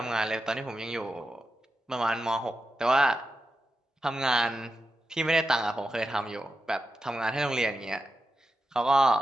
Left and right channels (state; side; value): normal; both; correlation 0.89